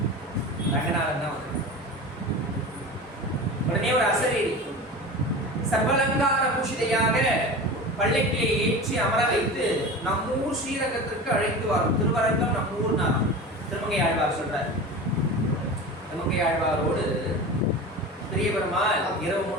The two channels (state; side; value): normal; both; correlation 0.31